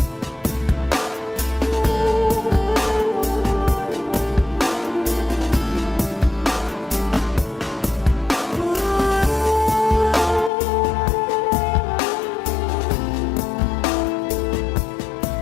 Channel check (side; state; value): right; drops out; at 10.5 s